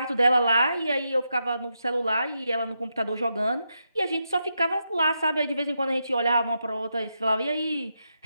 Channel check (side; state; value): both; inverted; correlation -0.84